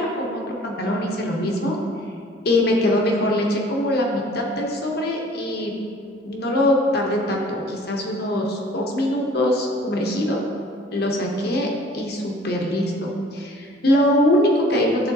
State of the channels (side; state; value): both; normal; correlation 0.51